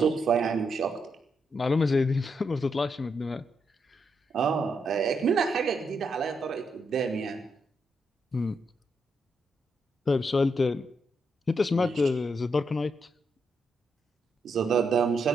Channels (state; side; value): normal; both; correlation 0.80